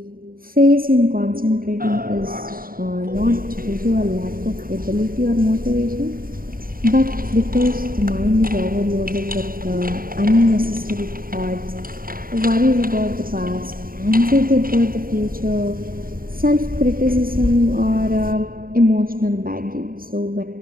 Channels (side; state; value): left; late; 0.42 ms